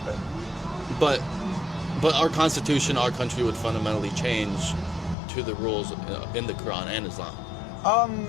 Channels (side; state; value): right; drops out; at 5.2 s